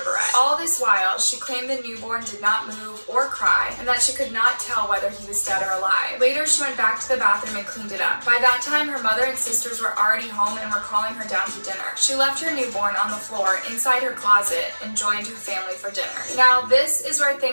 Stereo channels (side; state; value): both; inverted; correlation -1.00